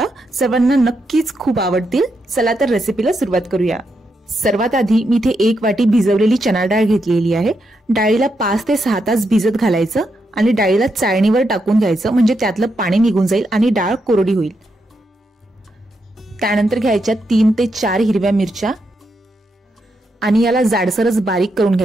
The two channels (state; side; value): normal; both; correlation 0.82